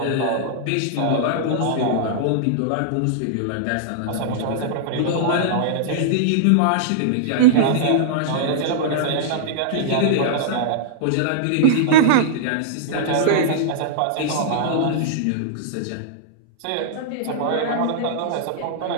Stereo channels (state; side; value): different; both; correlation -0.02